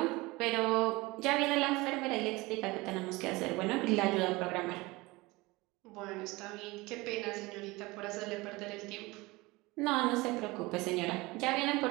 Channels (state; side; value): quieter; left; 22.3 dB